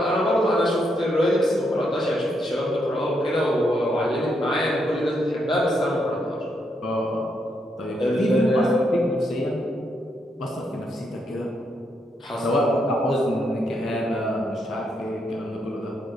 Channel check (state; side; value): normal; both; correlation 0.78